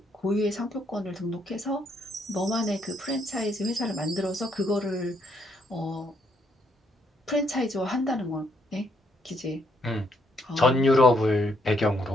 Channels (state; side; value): normal; both; correlation 0.73